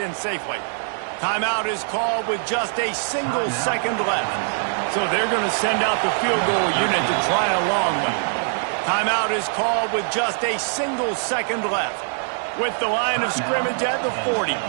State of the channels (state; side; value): silent; left; digital silence